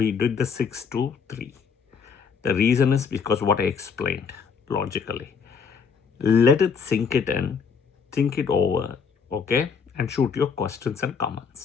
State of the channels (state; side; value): quieter; right; 6.1 dB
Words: did the 6 to 3. The reason is because what I explained logically. Let it sink it in, think it over, okay, and shoot your questions and